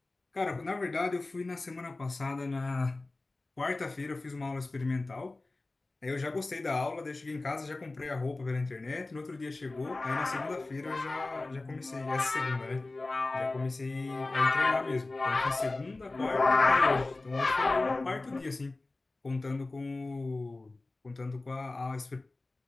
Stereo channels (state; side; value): quieter; right; 3.1 dB